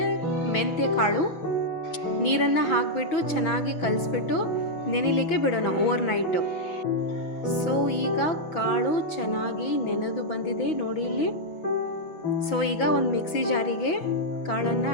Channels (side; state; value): right; late; 6.2 ms